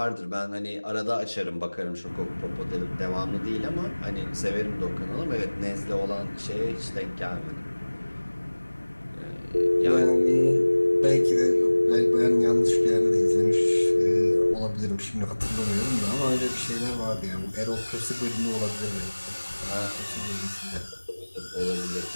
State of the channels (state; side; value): inverted; both; correlation -1.00